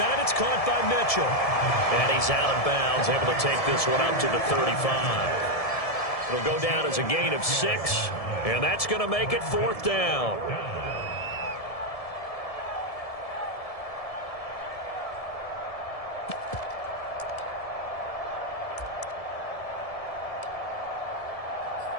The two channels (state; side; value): late; right; 1.7 ms